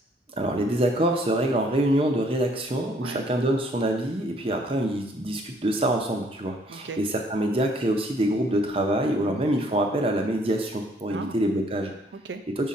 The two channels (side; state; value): both; normal; correlation 0.63